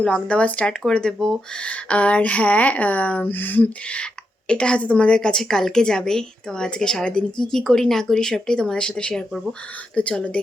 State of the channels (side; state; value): both; normal; correlation 0.84